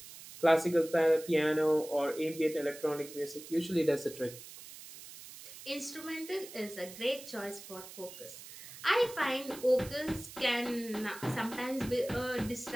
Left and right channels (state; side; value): noise; right; hiss, 15 dB below the sound